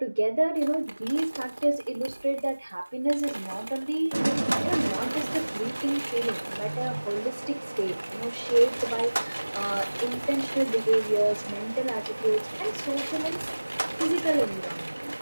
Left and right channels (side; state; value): both; inverted; correlation -1.00